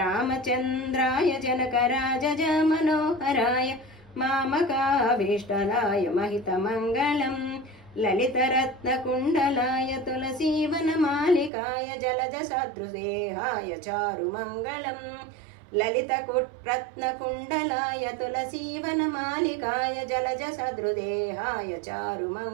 जनकराजज मनोहराय मामकाभीष्टदाय महितमङ्गलम् ललितरत्नकुण्डलाय तुलसीवनमालिकाय जलजसदृशदेहाय चारुमङ्गलम् ललितरत्नकुण्डलाय तुलसीवनमालिकाय जलजसदृदेहाय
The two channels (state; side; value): drops out; left; at 11.5 s